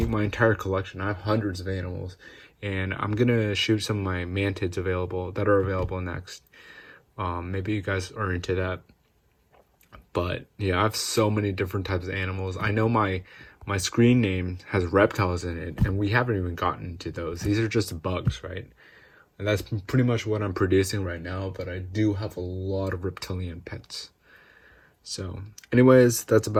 my entire collection. I have hundreds of animals, and I'm gonna shoot some of my mantids that are available next. Maybe you guys are into that. But yeah, I have so many different types of animals. I know my screen name has reptiles in it, and we haven't even gotten to those. These are just bugs, right? And that's pretty much what I'm producing right now, but I do have a lot of reptilian pets. So anyways, that's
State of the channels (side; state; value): both; identical; correlation 1.00